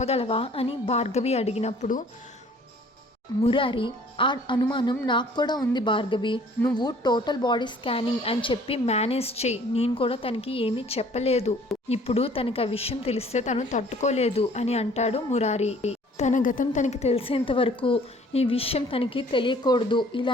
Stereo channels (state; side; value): normal; both; correlation 0.55